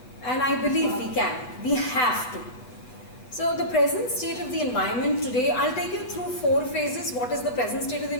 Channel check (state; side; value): late; right; 7.8 ms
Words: And I believe we can. We have to. So the present state of the environment today, I'll take you through 4 phases. What is the present state of the